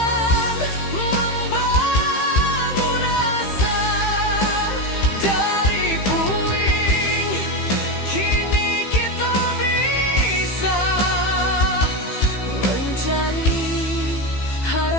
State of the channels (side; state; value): right; late; 15 ms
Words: membangun asa dari puing. Kini kita bisa mencari